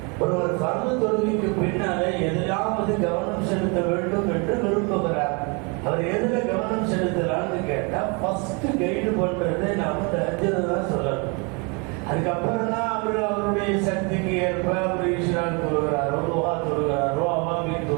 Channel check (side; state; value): left; quieter; 31.9 dB